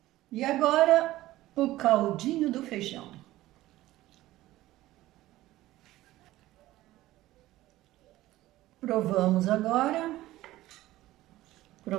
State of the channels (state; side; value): quieter; left; 16.2 dB